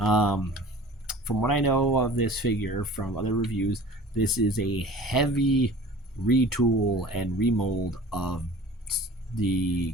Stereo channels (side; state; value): both; normal; correlation 0.43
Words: what I know of this figure from other reviews, this is a heavy retool and remold of the